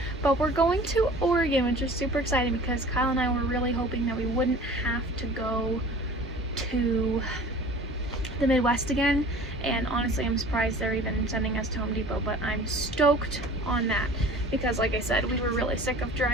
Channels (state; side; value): normal; both; correlation 0.44